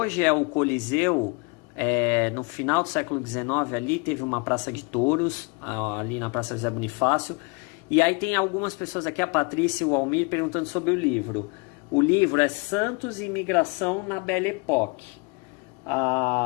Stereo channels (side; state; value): right; quieter; 31.2 dB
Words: é o Coliseu, no final do século XIX, ali teve uma praça de touros, ali na Praça José Bonifácio. E aí tem algumas pessoas aqui, a Patrícia e o Almir, perguntando sobre o livro. O livro é Santos e Imigração na Belle Époque.